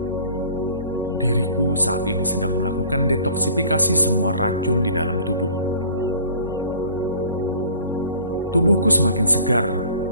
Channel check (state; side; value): inverted; both; correlation -0.49